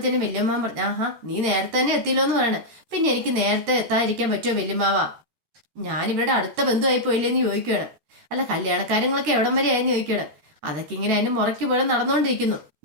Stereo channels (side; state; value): left; late; 13 ms